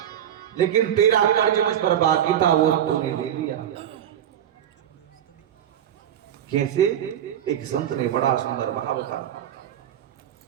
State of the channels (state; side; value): quieter; left; 10.3 dB